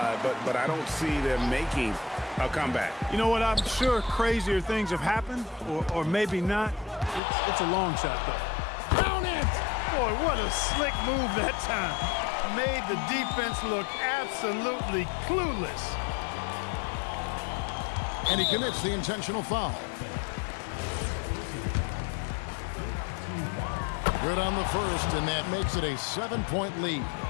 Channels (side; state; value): right; drops out; at 7.2 s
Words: but I don't see them making a comeback. You know what? I'm sure crazier things have happened, or maybe not. It's a long shot, though. Down it! Boy, what a slick move that time. Made the defense look absolutely clueless. And he commits the intentional foul. Good on the first, and that makes it a 7-point lead.